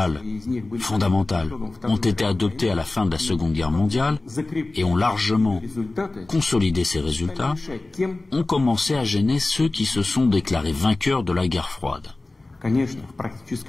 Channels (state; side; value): quieter; right; 3.1 dB